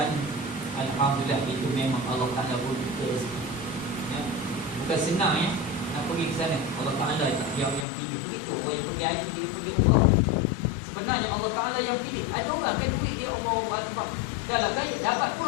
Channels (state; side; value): drops out; right; at 7.9 s